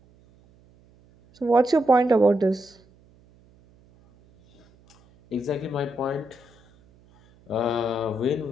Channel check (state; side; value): noise; right; hum, 30 dB below the sound